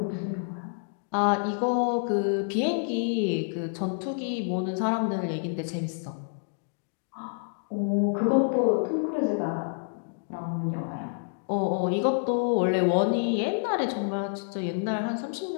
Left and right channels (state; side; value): silent; right; digital silence